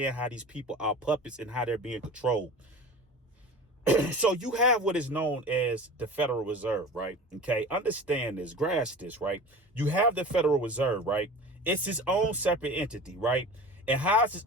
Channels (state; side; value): normal; both; correlation 0.36